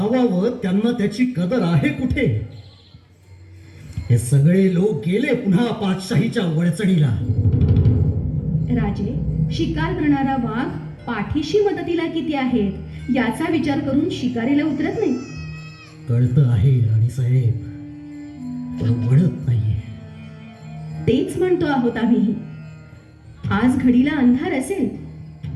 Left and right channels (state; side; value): identical; both; correlation 1.00